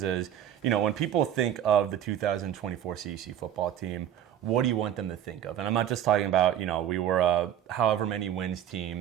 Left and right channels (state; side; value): quieter; left; 10.6 dB